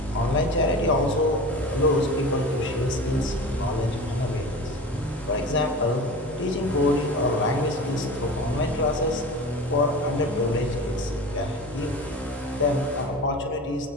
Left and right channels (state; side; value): normal; both; correlation 0.33